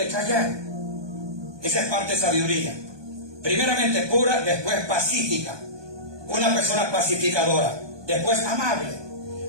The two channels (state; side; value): late; left; 1.2 ms